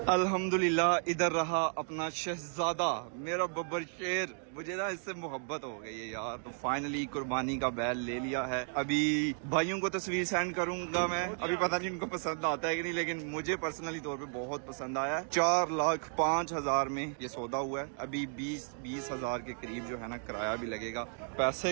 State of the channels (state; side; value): silent; left; 55 dB below the other